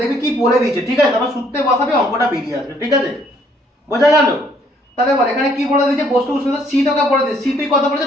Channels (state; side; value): normal; both; correlation 0.65